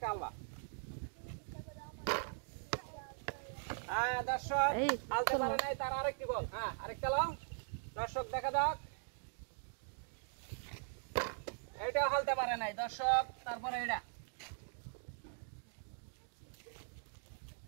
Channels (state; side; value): silent; left; digital silence